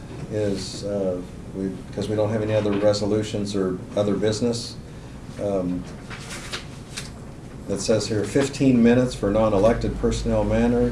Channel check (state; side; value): identical; both; correlation 1.00